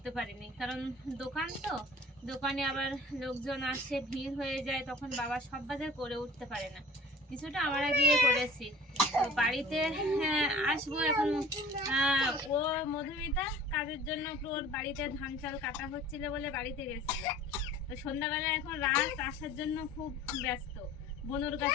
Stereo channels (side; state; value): both; normal; correlation 0.45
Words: পারিনি, কারণ দোকান তো, দোকানে আবার লোকজন আসে, ভিড় হয়ে যায়, তখন বাবা সব বাজার করে উঠতে পারে না। কিছুটা আমরা গিয়ে করেছি। তো বাড়িতে আসবো এখন। ও মধুমিতা কাজের জন্য ওর বাড়িতে ধান চাল কাটা হচ্ছিল বলে বাড়িতে গেছিল। তো সন্ধ্যাবেলা এখন রাত আসার জন্য খুব ব্যস্ত। বনুর